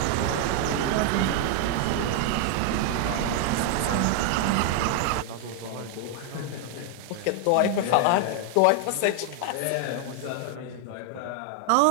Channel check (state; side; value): different; both; correlation 0.00